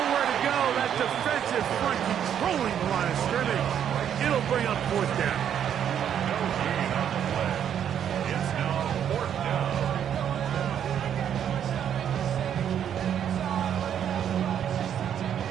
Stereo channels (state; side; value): quieter; left; 9.2 dB